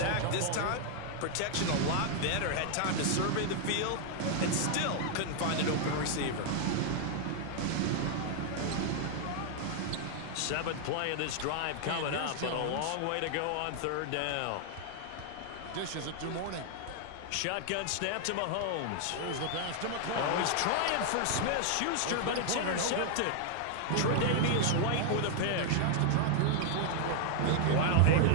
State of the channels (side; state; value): both; different; correlation 0.00